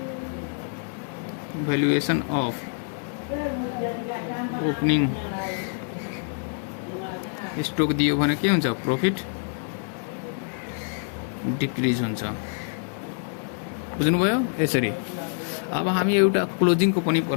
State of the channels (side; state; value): right; silent; 61 dB below the other